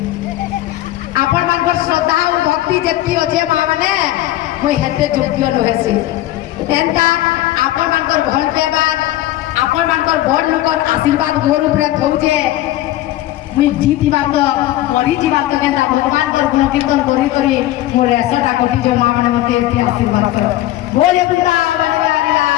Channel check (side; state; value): right; quieter; 14.9 dB